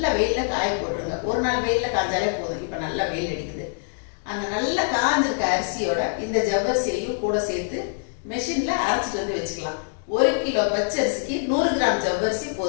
வெயிலில் காய போட்டுருங்க. ஒரு நாள் வெயிலில் காய்ஞ்சாலே போதும். இப்போ நல்லா வெயில் அடிக்குது. அந்த நல்லா காஞ்சிருக்க அரிசியோட இந்த ஜவ்வரிசியையும் கூட சேர்த்து மெஷினில் அரைச்சிட்டு வச்சுக்கலாம். 1 கிலோ பச்சரிசிக்கு 100 கிராம் ஜவ்வரிசி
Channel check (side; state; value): right; silent; digital silence